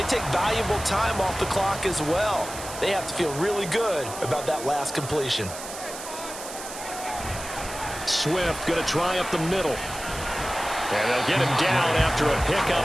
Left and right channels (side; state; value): right; noise; hiss, 11 dB below the sound